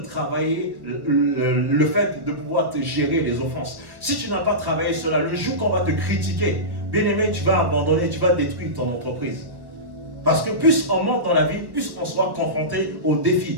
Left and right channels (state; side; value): late; left; 1.3 ms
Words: le fait de pouvoir te gérer les offenses. Si tu n'as pas travaillé cela, le jour qu'on va te critiquer, bien aimé, tu vas abandonner, tu vas détruire ton entreprise. Parce que plus on monte dans la vie, plus on sera confronté aux